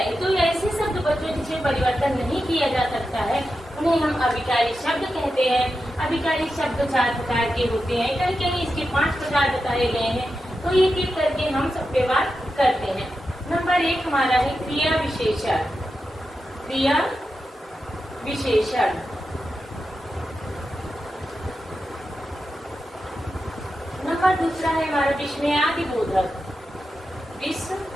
तो ऐसे शब्द बच्चों जिसमें परिवर्तन नहीं किया जा सकता है उन्हें हम अभिकारी शब्द कहते हैं। अभिकारी शब्द 4 प्रकार के होते हैं। कहीं कहीं इसके 5 प्रकार बताए गए हैं। तो एक एक करके हम सब पे बात करते हैं। नंबर 1 हमारा है क्रिया विशेषण। क्रिया विशेषण नंबर 2 है हमारा विस्मयादि बोधक। विस्मयादि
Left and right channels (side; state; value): both; normal; correlation 0.90